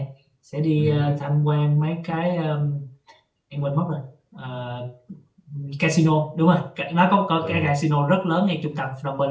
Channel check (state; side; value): identical; both; correlation 1.00